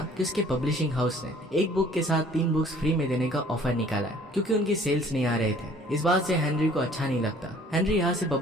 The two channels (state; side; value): normal; both; correlation 0.54